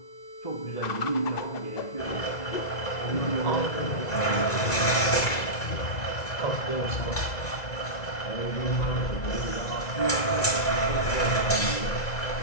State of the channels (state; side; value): late; right; 2.0 ms